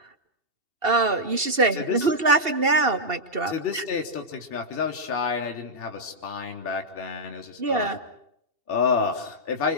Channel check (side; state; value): left; late; 2.7 ms